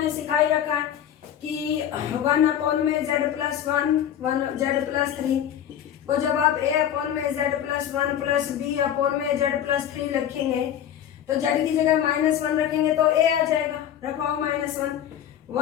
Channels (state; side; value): quieter; right; 10.1 dB